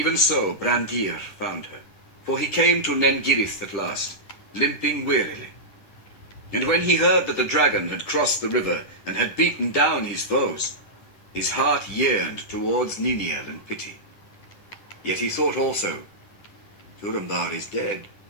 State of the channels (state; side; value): late; right; 10 ms